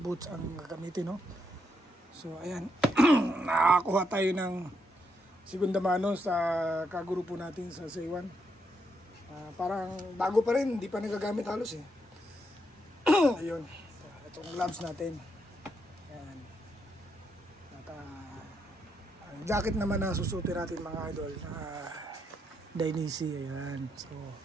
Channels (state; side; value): normal; both; correlation 0.79